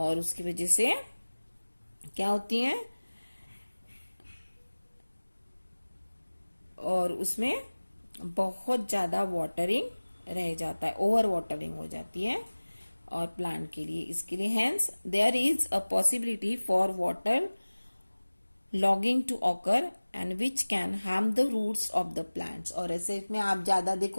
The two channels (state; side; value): inverted; both; correlation -1.00